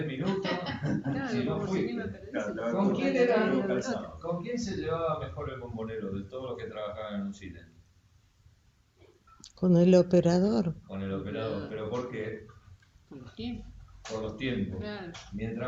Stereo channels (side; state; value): both; identical; correlation 1.00